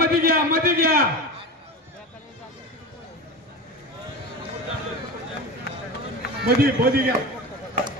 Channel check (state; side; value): normal; both; correlation 0.26